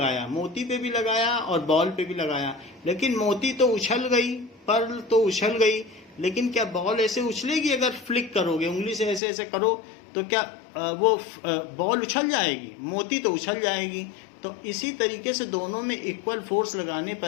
मोती पे भी लगाया और बॉल पे भी लगाया, लेकिन मोती तो उछल गई, पर्ल तो उछल गई, लेकिन क्या बॉल ऐसे उछलेगी? अगर फ्लिक करोगे, उंगली से ऐसे ऐसे करो, तो क्या वो बॉल उछल जाएगी? मोती तो उछल जाएगी। तो इसी तरीके से दोनों में इक्वल फोर्स लगाने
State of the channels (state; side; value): drops out; right; at 9.2 s